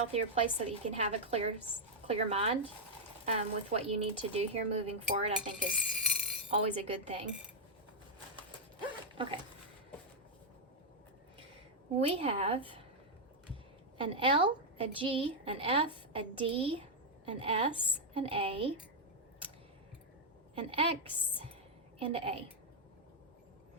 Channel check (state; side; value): normal; both; correlation -0.02